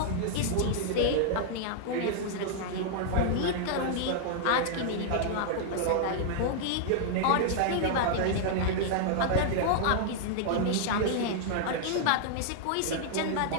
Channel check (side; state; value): both; different; correlation -0.01